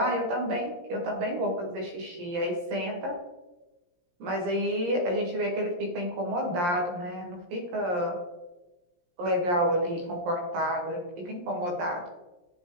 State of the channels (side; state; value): left; late; 17 ms